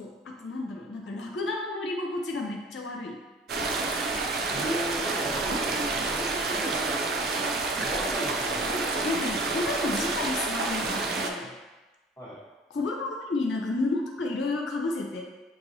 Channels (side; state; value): both; normal; correlation 0.46